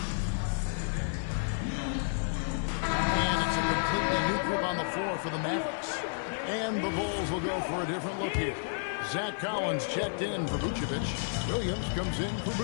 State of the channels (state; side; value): silent; right; digital silence